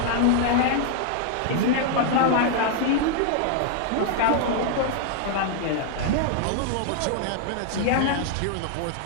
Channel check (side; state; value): both; different; correlation 0.00